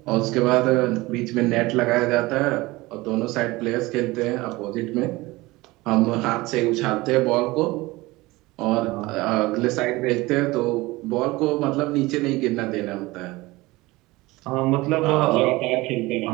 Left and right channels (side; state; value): left; quieter; 20.8 dB